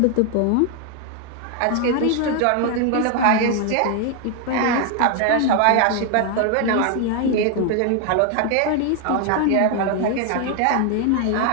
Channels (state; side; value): different; both; correlation 0.01